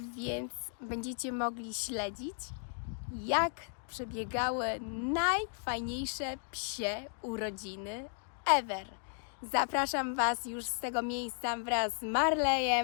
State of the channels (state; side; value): silent; right; 55 dB below the other